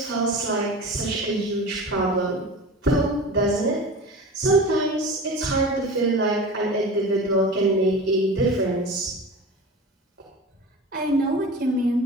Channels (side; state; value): both; normal; correlation 0.33